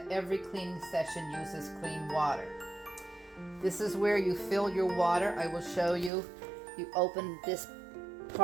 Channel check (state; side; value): drops out; left; at 6.1 s